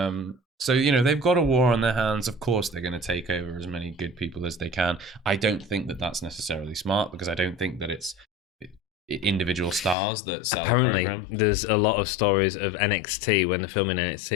So you know they've got a war on their hands. Of course, they're going to take over as many good people as they can. I don't think that that's necessarily smart, because I don't think that it's individual stars that sell Apparently, a program. There's a lot of stories of NXT when they're filming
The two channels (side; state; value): right; drops out; at 10.0 s